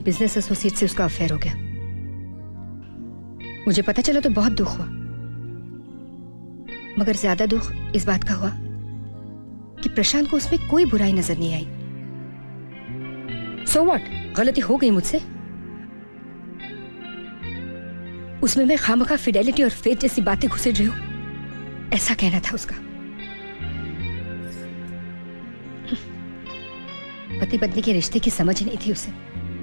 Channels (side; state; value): both; inverted; correlation -1.00